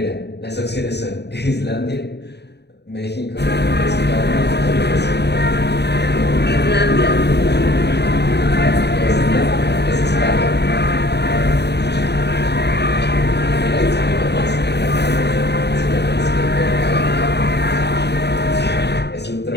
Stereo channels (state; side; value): late; right; 0.49 ms